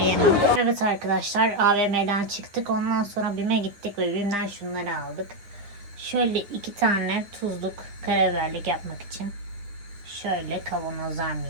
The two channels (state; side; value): late; left; 9.8 ms